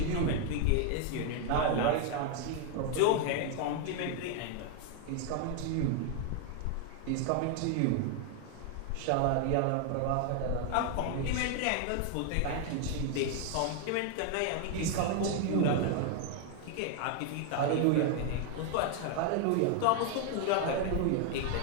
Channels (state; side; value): different; both; correlation 0.00